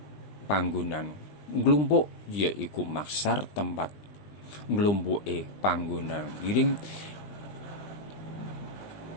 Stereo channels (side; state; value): right; late; 20 ms